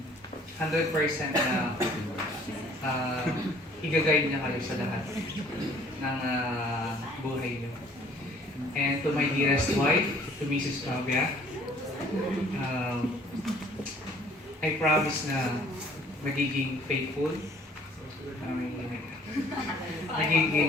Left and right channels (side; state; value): both; normal; correlation 0.56